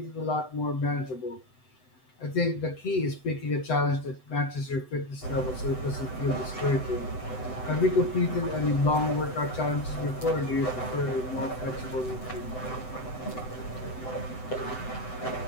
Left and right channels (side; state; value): right; late; 7.9 ms